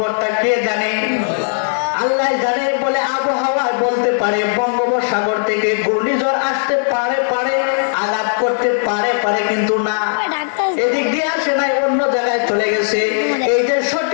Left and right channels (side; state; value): right; silent; digital silence